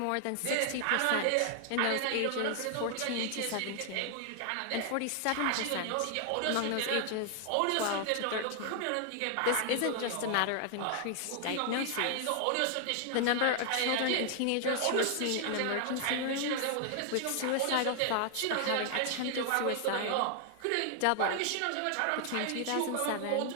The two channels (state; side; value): different; both; correlation 0.00